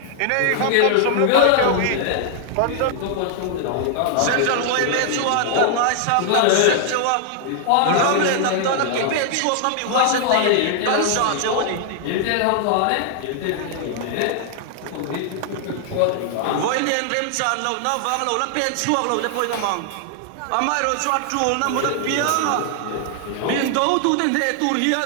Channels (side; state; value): both; different; correlation 0.00